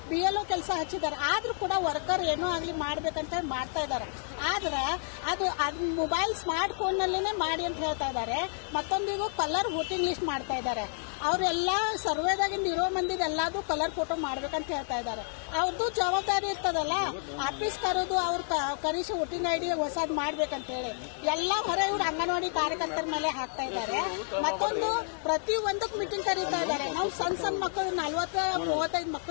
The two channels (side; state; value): right; silent; 58 dB below the other